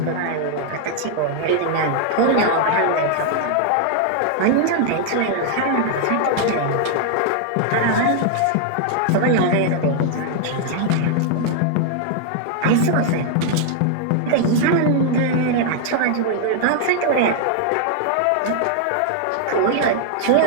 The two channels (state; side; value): different; both; correlation 0.00